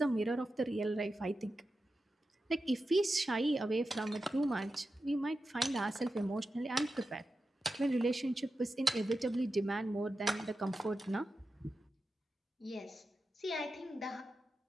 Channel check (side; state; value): both; normal; correlation 0.91